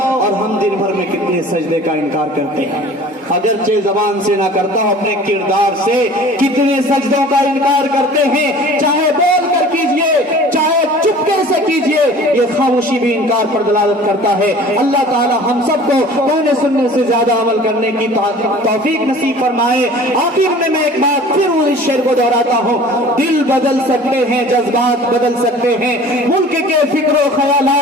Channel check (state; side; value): normal; both; correlation 0.45